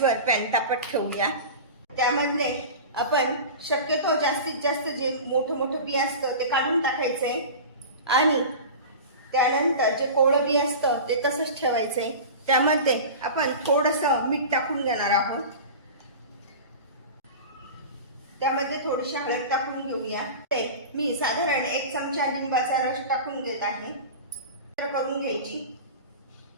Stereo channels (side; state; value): both; inverted; correlation -0.32